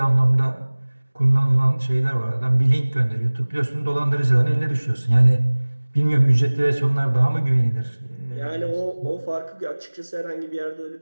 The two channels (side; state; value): both; inverted; correlation -1.00